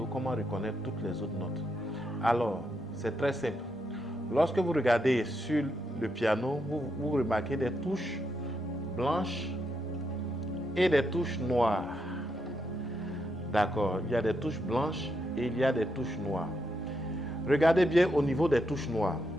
comment reconnaître toutes les autres notes. Alors, c'est très simple. Lorsque vous regardez sur le piano, vous remarquez des touches blanches et des touches noires. D'accord, il y a des touches blanches et il y a des touches noires. Regardez bien au niveau des touches noires.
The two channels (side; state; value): both; normal; correlation 0.81